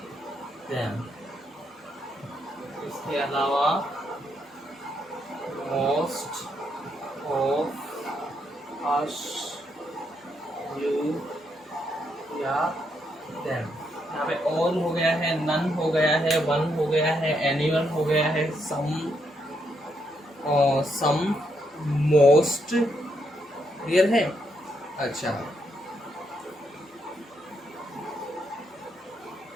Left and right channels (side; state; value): both; normal; correlation 0.78